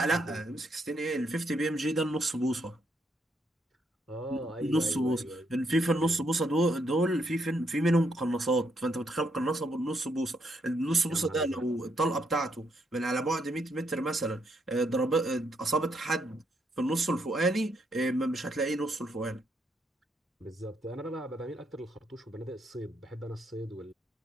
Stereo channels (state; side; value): normal; both; correlation 0.76